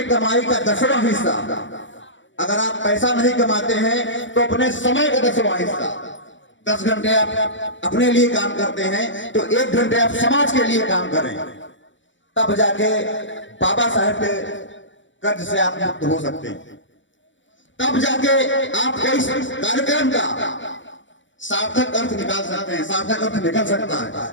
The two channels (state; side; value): late; right; 0.55 ms